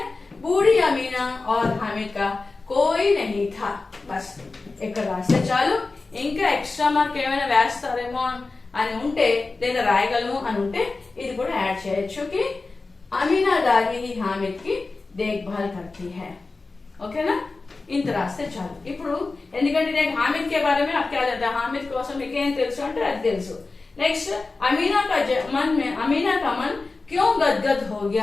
बूढ़ी अमीना और हामिद का कोई नहीं था बस ఇక్కడ రాస్తే చాలు ఇంకా ఎక్స్ట్రా మార్క్ ఏమైనా వేస్తారేమో అని ఉంటే లేదా రాయగలము అని ఉంటే ఇది కూడా యాడ్ చేయొచ్చు कि अमीना दादी ही हामिद की देखभाल करती है ओके ना ఇంత రాస్తే చాలు ఇప్పుడు ఎందుకంటే నేను हामिद के बारे में आप क्या जानते हैं हामिद కోసం మీకు ఏం తెలుసు అంటే అది తెలుసు नेक्स्ट अमीना का मन क्यों गदगद हो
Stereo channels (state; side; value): quieter; right; 3.7 dB